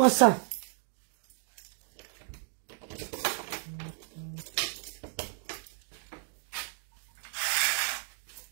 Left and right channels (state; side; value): silent; left; 56 dB below the other